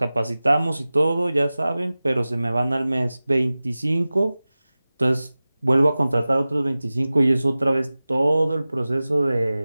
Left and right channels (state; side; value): inverted; both; correlation -0.97